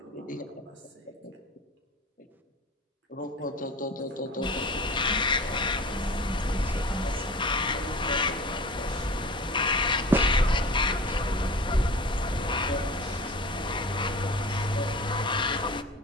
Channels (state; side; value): normal; both; correlation 0.38